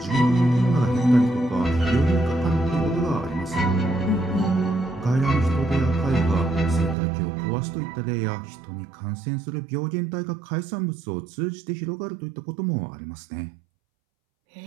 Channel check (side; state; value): left; drops out; at 7.0 s